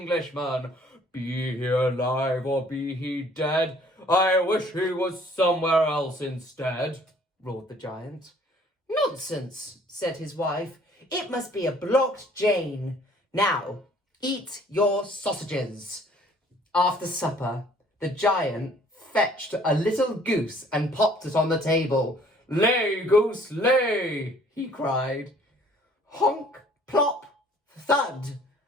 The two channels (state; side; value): normal; both; correlation 0.57